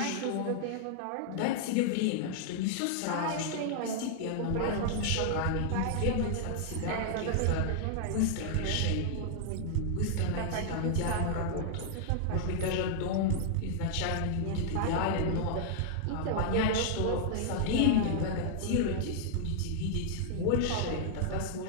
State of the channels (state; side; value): different; both; correlation -0.01